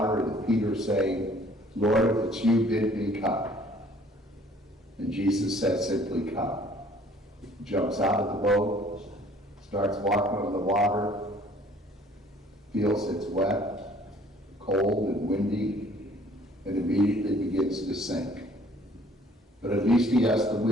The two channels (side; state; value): both; normal; correlation 0.56